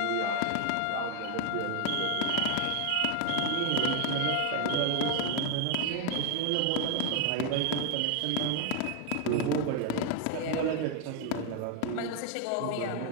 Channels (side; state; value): both; different; correlation 0.01